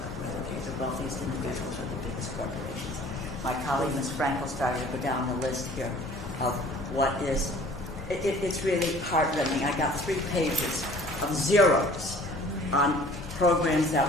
whether they're the wealthiest individuals or the biggest corporations. My colleague, Ms. Frankel, started to go down the list here of what is, it's really heartrending. I got 3 pages of zeros on programs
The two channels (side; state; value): both; normal; correlation 0.50